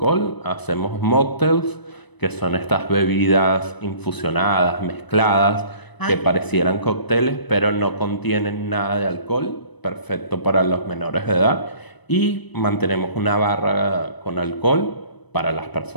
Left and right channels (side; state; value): right; late; 1.0 ms